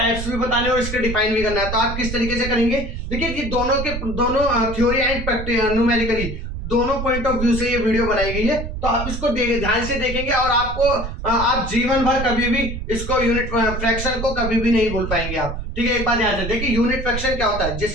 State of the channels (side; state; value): right; noise; rumble, 6 dB below the sound